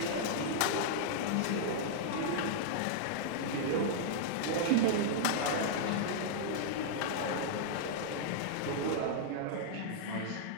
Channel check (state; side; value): different; both; correlation -0.01